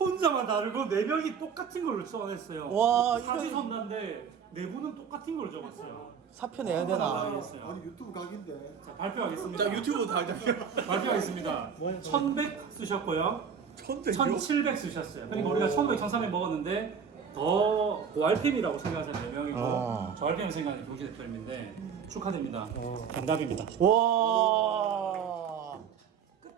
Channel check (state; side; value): quieter; left; 6.9 dB